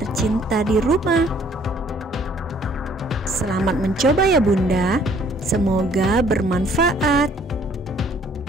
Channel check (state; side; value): normal; both; correlation 0.60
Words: di rumah. Selamat mencoba ya Bunda. Semoga bermanfaat.